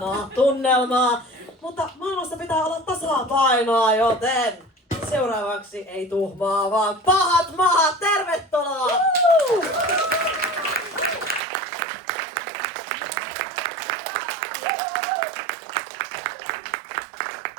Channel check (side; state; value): left; drops out; at 11.4 s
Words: tunnelmaa, mutta maailmassa pitää olla tasapainoa, joten seuraavaksi ei tuhmaa, vaan pahat mahat, tervetuloa!